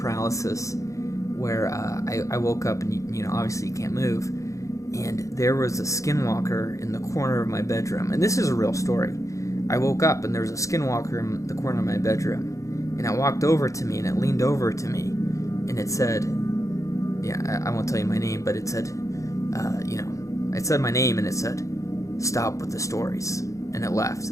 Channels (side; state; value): right; late; 0.15 ms